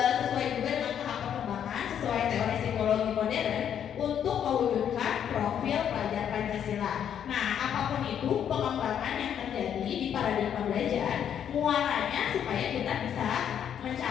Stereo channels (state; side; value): quieter; right; 9.1 dB